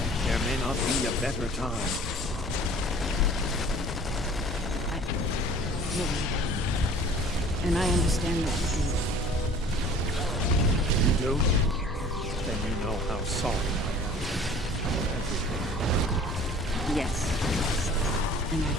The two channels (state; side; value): normal; both; correlation 0.48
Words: There may not be a better time. And I understand that you do. Then you know how sorry I am for everything. Yes. And